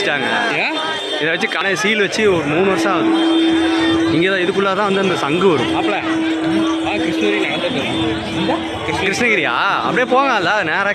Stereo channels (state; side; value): identical; both; correlation 1.00